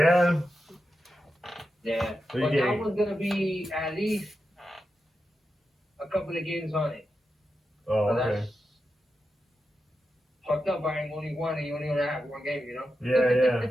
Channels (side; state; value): both; normal; correlation 0.89